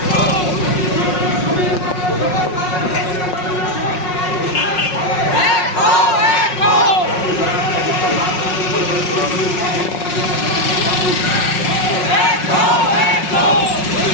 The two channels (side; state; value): right; late; 5.5 ms